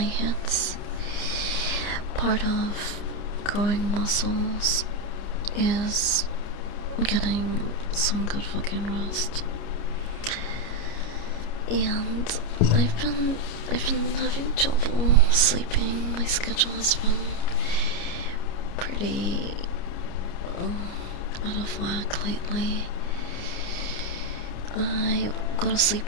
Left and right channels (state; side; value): late; right; 29 ms